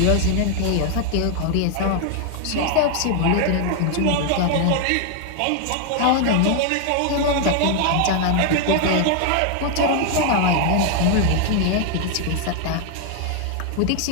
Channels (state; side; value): different; both; correlation 0.00